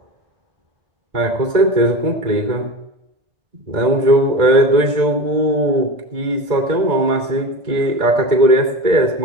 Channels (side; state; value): left; late; 2.0 ms